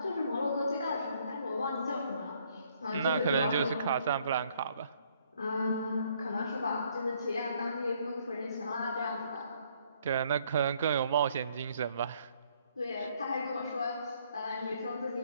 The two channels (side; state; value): both; inverted; correlation -0.66